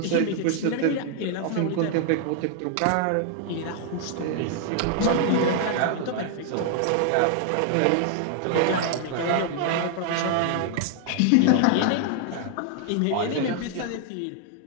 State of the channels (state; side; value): different; both; correlation 0.00